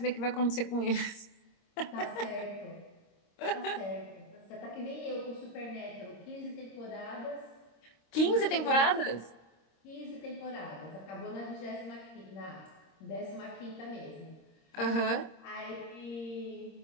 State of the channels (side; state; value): right; late; 26 ms